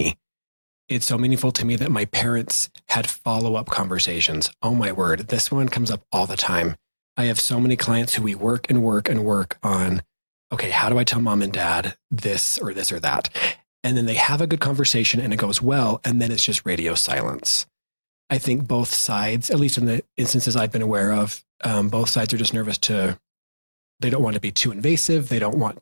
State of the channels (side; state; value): both; inverted; correlation -1.00